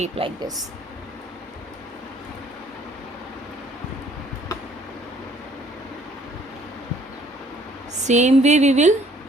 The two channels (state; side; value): normal; both; correlation 0.60